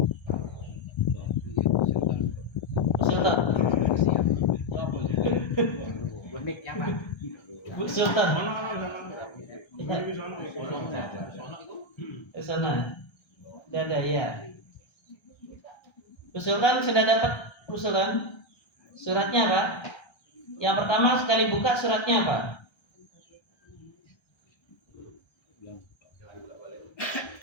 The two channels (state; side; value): late; right; 1.3 ms